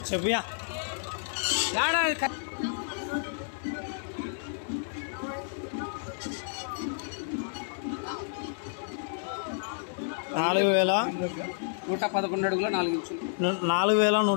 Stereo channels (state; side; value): silent; right; digital silence